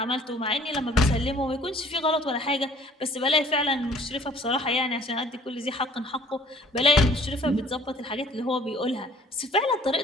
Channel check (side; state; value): both; normal; correlation 0.54